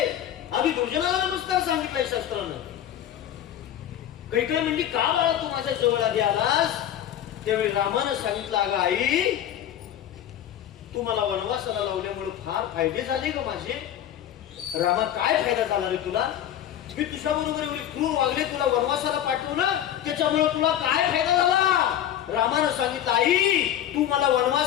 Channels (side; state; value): right; quieter; 11.0 dB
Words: आधी दुर्जनाला नमस्कार सांगितलाय शास्त्रानं. कैकेयी म्हणली का बाळा तू माझ्या जवळ आधी आलास? त्यावेळी रामानं सांगितलं, अगं आई तू मला वनवासाला लावल्यामुळे फार फायदे झाले ग माझे. रामा काय फायदा झाला रे तुला? मी तुझ्या बरोबर एवढी क्रूर वागले, तुला वनवासाला पाठवलं, त्याच्यामुळे तुला काय फायदा झाला? रामानं सांगितलं, आई तू मला